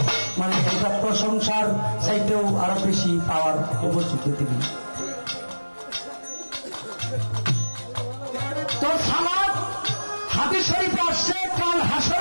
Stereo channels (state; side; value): inverted; both; correlation -1.00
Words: মানে এটা প্রশংসার চাইতেও আরো বেশি পাওয়ার উপযুক্ত তিনি। তো সালাত হাদিস শরীফে আসছে, কাল